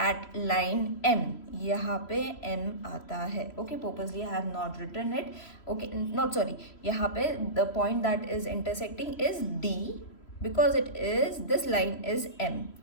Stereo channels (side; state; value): right; late; 3.0 ms